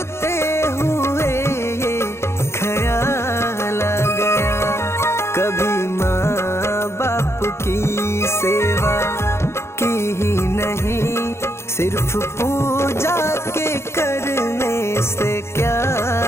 सेवा की ही नहीं, सिर्फ पूजा के करने से क्या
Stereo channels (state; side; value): late; right; 0.13 ms